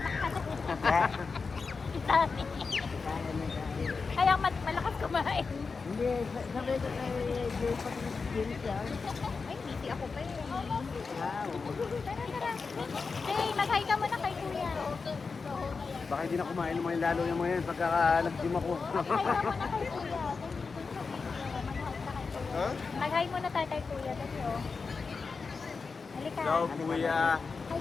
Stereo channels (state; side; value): quieter; right; 4.7 dB